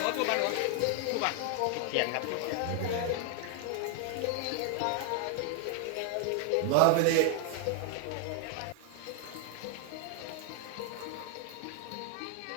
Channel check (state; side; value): different; both; correlation 0.00